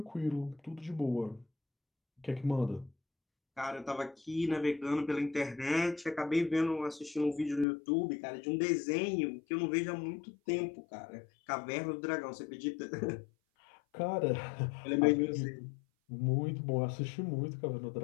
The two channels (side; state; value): right; drops out; at 7.7 s